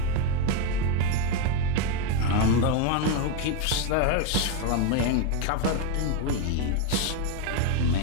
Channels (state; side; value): different; both; correlation 0.02